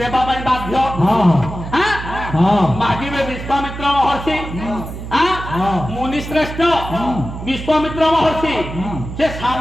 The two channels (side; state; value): right; noise; hum, 9 dB below the sound